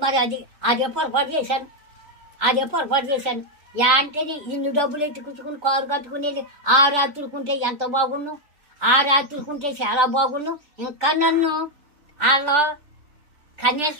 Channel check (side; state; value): left; late; 3.4 ms